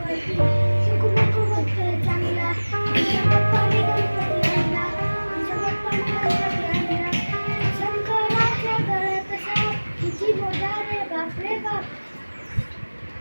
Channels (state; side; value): inverted; both; correlation -1.00